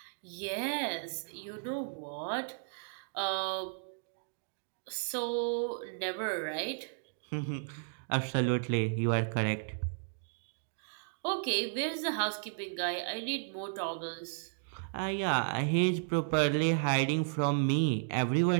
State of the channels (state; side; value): silent; left; digital silence